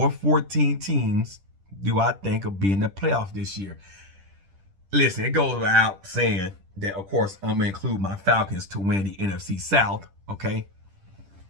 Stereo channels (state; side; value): late; left; 10 ms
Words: 14 teams do I think will be in the playoffs this year? Listen, it goes without saying that, of course, I'm going to include my Falcons to win the NFC South, okay?